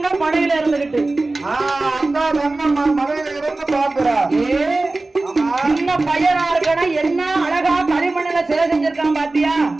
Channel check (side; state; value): left; quieter; 3.2 dB